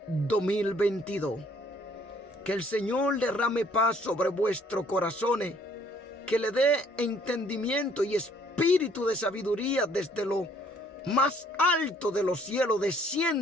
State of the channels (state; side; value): normal; both; correlation 0.62